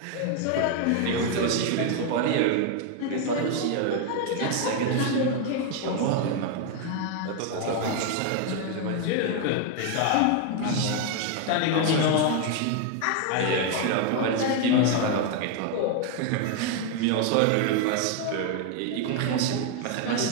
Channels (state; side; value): different; both; correlation 0.01